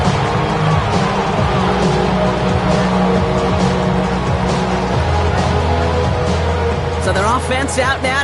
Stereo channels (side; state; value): both; identical; correlation 1.00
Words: So their offense out now